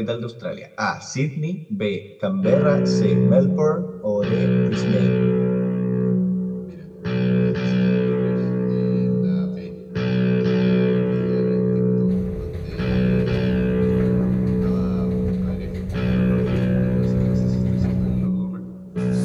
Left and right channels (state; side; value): identical; both; correlation 1.00